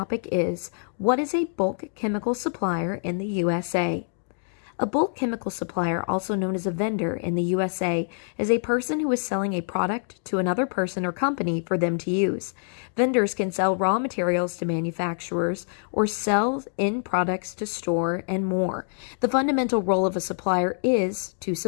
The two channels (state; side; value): silent; right; 61 dB below the other